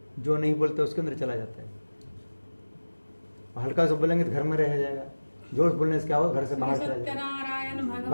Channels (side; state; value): both; inverted; correlation -1.00